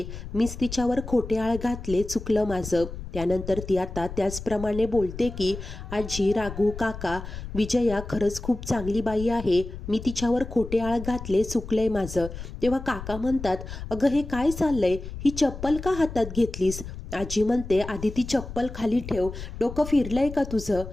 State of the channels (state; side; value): noise; left; rumble, 10 dB below the sound